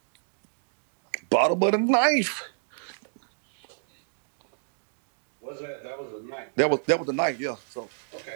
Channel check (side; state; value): left; silent; digital silence